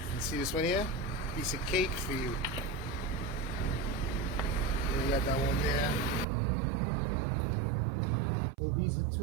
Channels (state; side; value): drops out; left; at 6.2 s